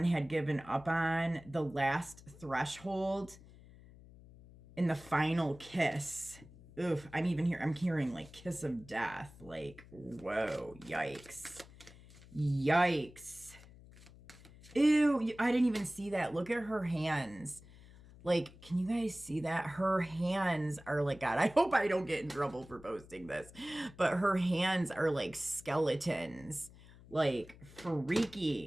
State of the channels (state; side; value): noise; left; hum, 21 dB below the sound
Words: had given up on, the last threshold, in the final kiss. Oof, I'm hearing like kiss of death. Like, whoa, yikes. Yikes. Ew, I didn't even see that. Look at her hands. Like, can you guys see that? Her hands are like, God, I hope I don't get in trouble for posting this, but her hands are like skeletons. Like,